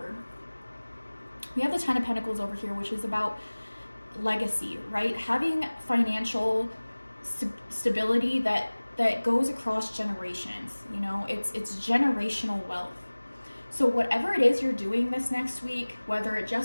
We have the Ten of Pentacles over here, which is about legacy, right? Having financial stability that goes across generations. You know, it's generational wealth. So whatever it is you're doing this next week, whether it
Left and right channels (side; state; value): both; inverted; correlation -1.00